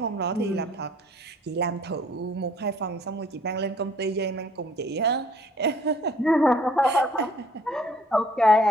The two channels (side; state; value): both; normal; correlation 0.58